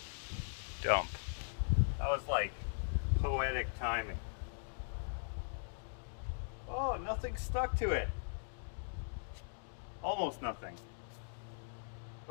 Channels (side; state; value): right; silent; digital silence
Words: dump. That was like poetic timing. Oh, nothing stuck to it. Almost nothing.